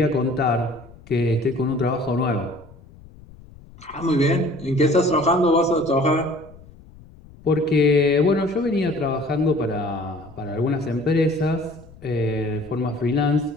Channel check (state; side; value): noise; left; rumble, 22 dB below the sound